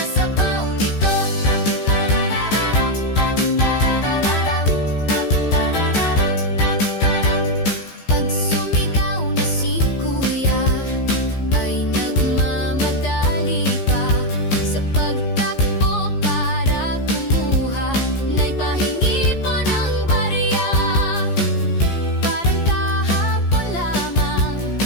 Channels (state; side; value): late; right; 15 ms